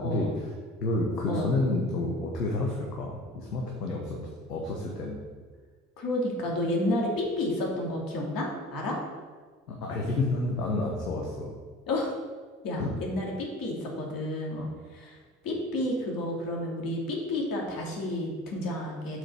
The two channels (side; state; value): both; normal; correlation 0.41